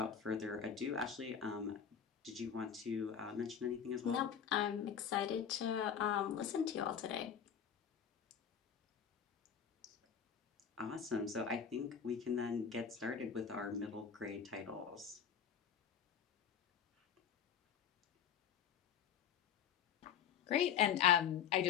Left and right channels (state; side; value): quieter; right; 8.0 dB